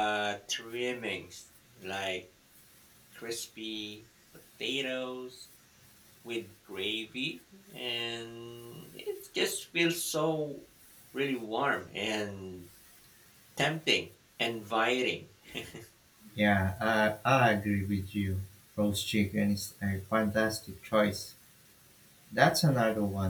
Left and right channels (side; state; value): both; identical; correlation 1.00